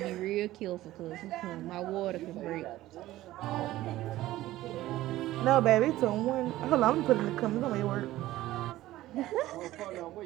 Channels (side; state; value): left; quieter; 15.7 dB